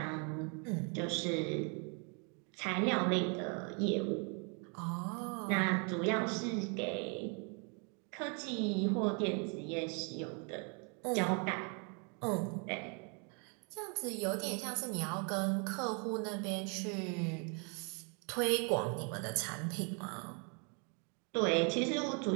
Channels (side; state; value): left; quieter; 36.6 dB